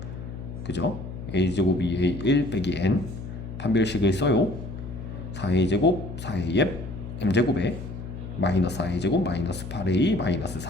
그죠? a제곱이 a1 빼기 n 판별식을 써요. 4a제곱 4af m제곱에 마이너스 4a제곱 마이너스 8a 마이너스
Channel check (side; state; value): left; noise; hum, 9 dB below the sound